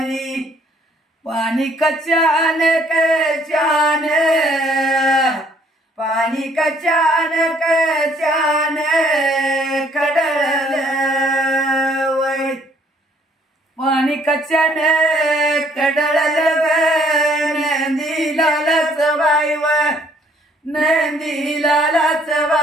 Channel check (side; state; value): both; normal; correlation 0.63